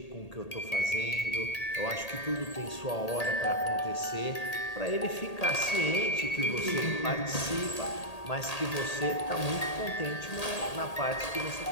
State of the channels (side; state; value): right; late; 1.8 ms